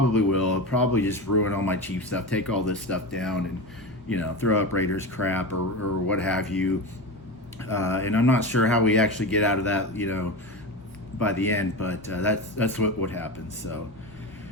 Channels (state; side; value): normal; both; correlation 0.22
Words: will. He'll probably just ruin all my Chiefs stuff, take all this stuff down, and, throw up Raiders crap or what have you. And I'm not sure how we actually get out of that, by the end, but that's what would happen. So